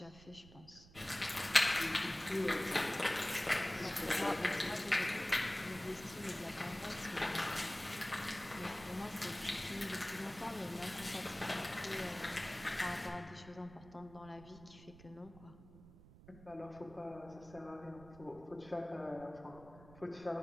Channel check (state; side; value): noise; right; rumble, 19 dB below the sound